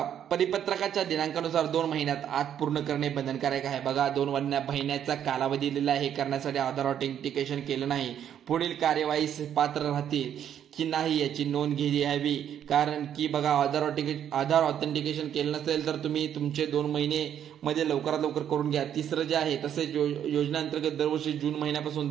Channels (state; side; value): quieter; left; 9.6 dB